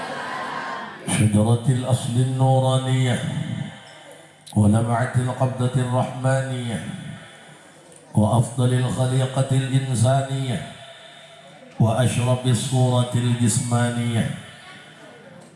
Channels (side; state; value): both; identical; correlation 1.00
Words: شجرة الأصل النورانية ولمعة القبضة الرحمانية وأفضل الخليقة الإنسانية وأشرف الصورة الجسمانية